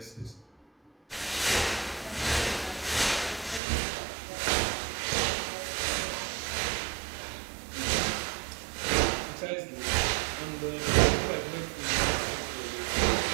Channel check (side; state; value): left; drops out; at 3.6 s